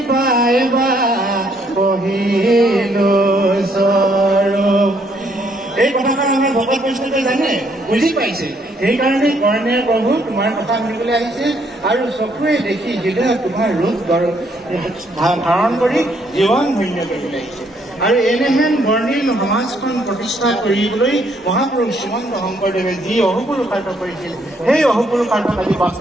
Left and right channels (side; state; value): both; normal; correlation 0.69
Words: পাইবা কহিলো স্বৰূপ এই কথাষাৰ আমাৰ ভকত বৈষ্ণৱে জানে বুজি পাইছে সেইকাৰণে কৰ্ণে প্ৰভু তোমাৰ কথা শুনিবলৈ আহিছে আৰু চকুৰে দেখি হৃদয়ত তোমাৰ ৰূপ ধাৰণ কৰি জীৱন ধন্য কৰিবলৈ আহিছে আৰু এনেহেন বৰ্ণিল সমাজখন প্ৰতিষ্ঠা কৰিবলৈ মহাপুৰুষ শ্ৰীমন্ত শংকৰদেৱে যি অহুপুৰুষাৰ্থ কৰিছিল সেই অহুপুৰুষাৰ্থক আজি